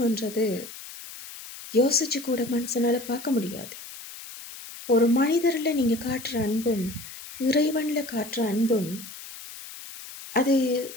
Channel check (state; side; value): noise; left; hiss, 14 dB below the sound